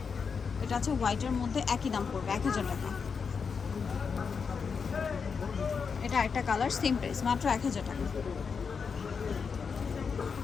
এটা আছে হোয়াইটের মধ্যে, একই দাম পড়বে 1000 টাকা। এটা একটা কালার, সেম প্রাইস মাত্র 1000 টাকা,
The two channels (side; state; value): right; quieter; 5.8 dB